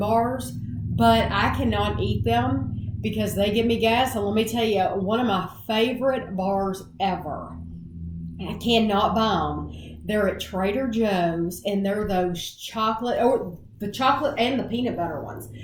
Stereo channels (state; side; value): identical; both; correlation 1.00